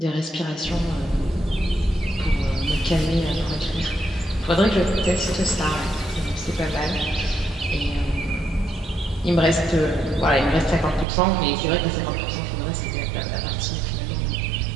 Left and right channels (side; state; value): left; drops out; at 11.1 s